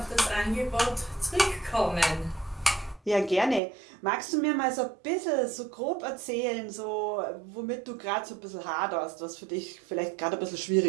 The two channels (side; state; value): left; drops out; at 3.6 s